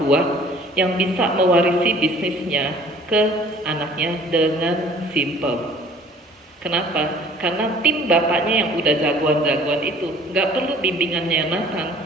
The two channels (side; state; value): both; normal; correlation 0.52